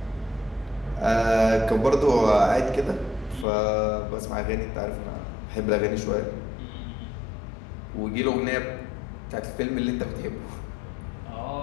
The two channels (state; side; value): drops out; right; at 3.5 s